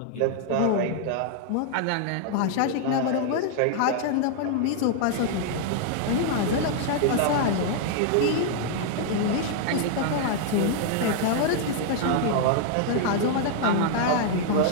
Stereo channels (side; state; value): both; different; correlation -0.01